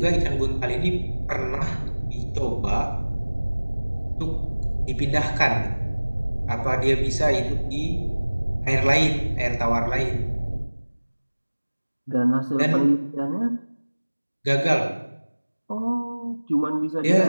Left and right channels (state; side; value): inverted; both; correlation -1.00